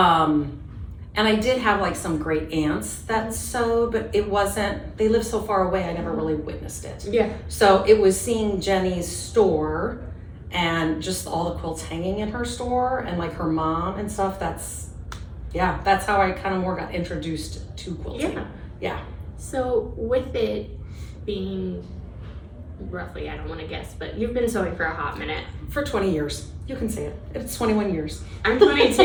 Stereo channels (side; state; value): both; identical; correlation 1.00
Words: And I did have some great aunts that sewed, but it wasn't, they lived so far away, I never really witnessed it. Yeah. So it was seeing Jenny's store and just all the quilts hanging in her store, and her mom and stuff. That's how I kind of more got introduced to quilting. Yeah. So with it, being roughly, I don't want to guess, but you've been sewing for a hot minute. For 20 years. You can say it. It's 21 years. I'm